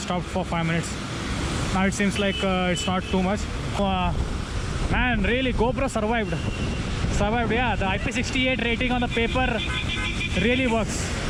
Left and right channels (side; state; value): both; identical; correlation 1.00